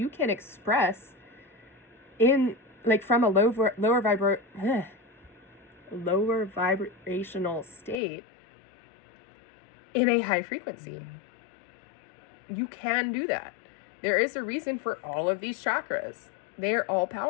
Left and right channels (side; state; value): right; drops out; at 8.0 s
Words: can express from a lower vibrational state in a high frequency. You can do that. There is a reason for all of these chakras. They're all